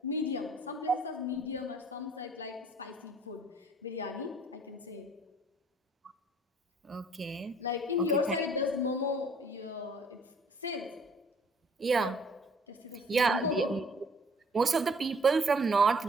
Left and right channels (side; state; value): both; normal; correlation 0.57